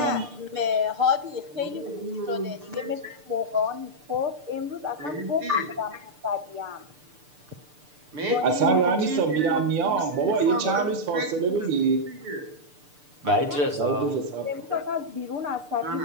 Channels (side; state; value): left; late; 6.7 ms